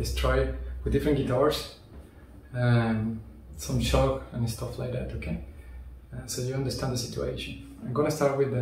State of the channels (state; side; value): identical; both; correlation 1.00